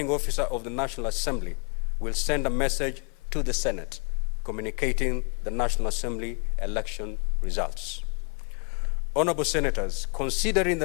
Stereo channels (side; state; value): right; quieter; 35.8 dB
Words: officer of the National Assembly will send a message to the Senate communicating the National Assembly election results. Honorable Senators, considering